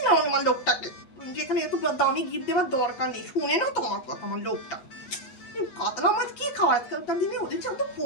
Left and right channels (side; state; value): right; late; 8.3 ms